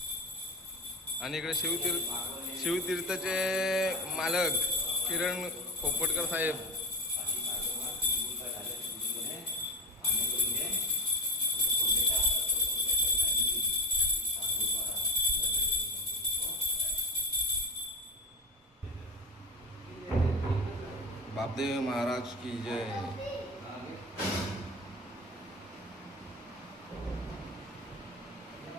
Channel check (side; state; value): both; normal; correlation 0.19